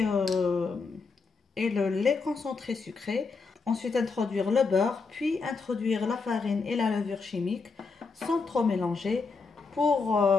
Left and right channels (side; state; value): right; quieter; 4.5 dB